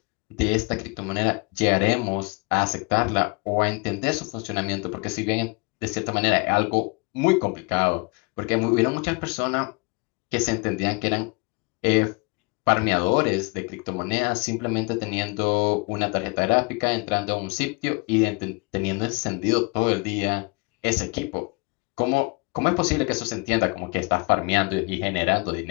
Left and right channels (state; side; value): quieter; right; 29.6 dB